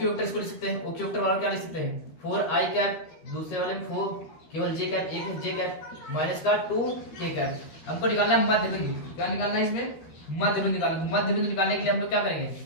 वेक्टर इसको लिख सकते हैं, ओक्यू वेक्टर वाला क्या लिख सकते हैं 4 आई कैप, दूसरे वाले में 4 केवल जे कैप, एक है जे कैप माइनस का 2 के कैप। हमको निकालना मध्य बिंदु, क्या निकालना है इसमें मध्य बिंदु निकालना। मध्य बिंदु निकालने के लिए हम लोग क्या करेंगे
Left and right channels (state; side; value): late; right; 13 ms